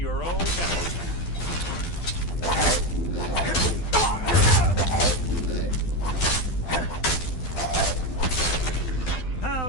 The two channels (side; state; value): right; late; 12 ms